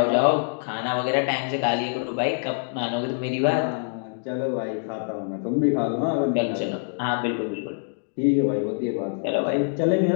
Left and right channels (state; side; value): silent; right; digital silence